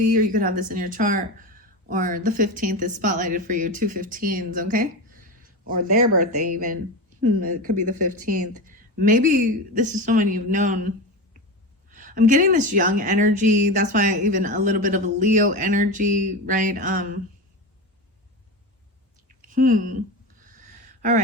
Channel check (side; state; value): both; normal; correlation 0.22